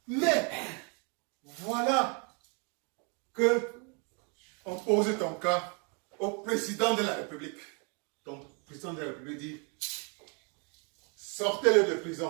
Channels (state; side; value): quieter; left; 35.8 dB